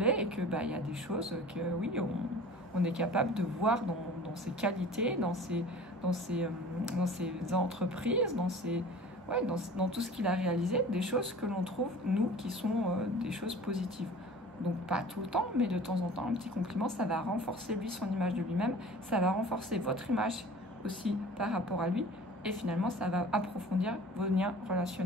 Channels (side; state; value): both; normal; correlation 0.43